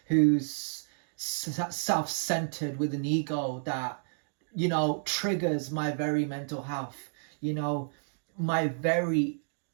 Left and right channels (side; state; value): left; silent; digital silence